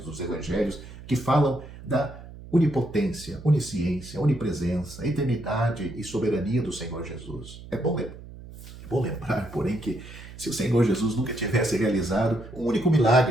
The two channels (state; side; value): noise; right; hum, 15 dB below the sound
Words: evangelhos que falam da onipotência, onisciência, onipresença, eternidade e soberania do Senhor Jesus. É bom lembrar, porém, que Se o Senhor Jesus nunca tivesse realizado um único